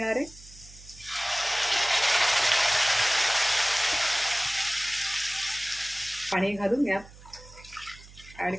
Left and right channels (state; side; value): noise; right; hum, 20 dB below the sound